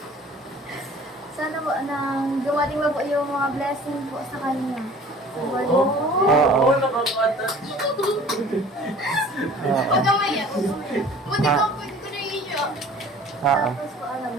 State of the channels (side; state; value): both; normal; correlation 0.48